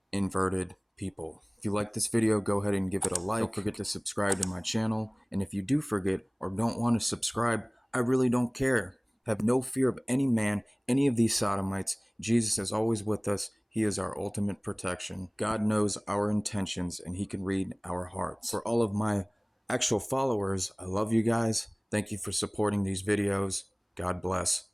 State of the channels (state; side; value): identical; both; correlation 1.00